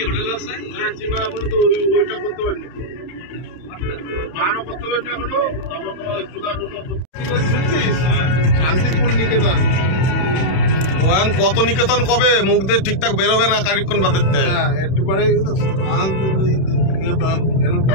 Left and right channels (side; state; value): right; late; 31 ms